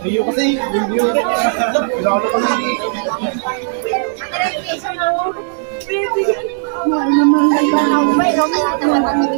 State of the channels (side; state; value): left; silent; 69 dB below the other